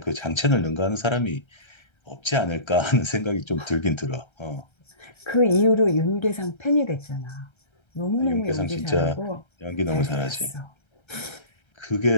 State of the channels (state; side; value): late; right; 1.3 ms